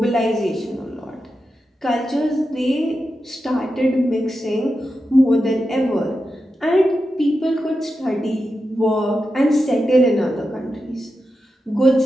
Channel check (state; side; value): normal; both; correlation 0.89